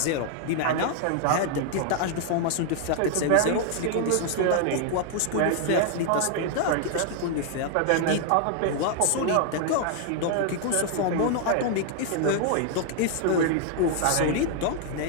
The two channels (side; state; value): both; different; correlation 0.00